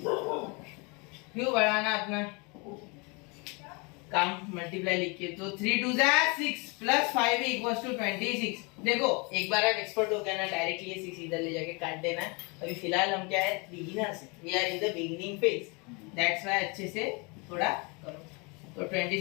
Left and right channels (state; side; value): quieter; right; 30.1 dB